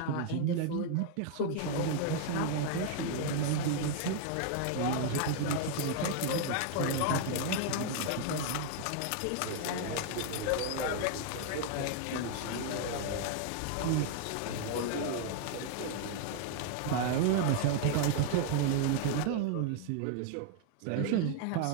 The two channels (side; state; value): both; different; correlation 0.00